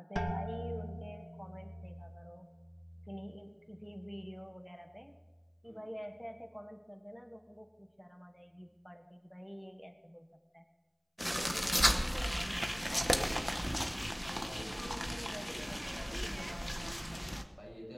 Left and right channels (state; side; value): identical; both; correlation 1.00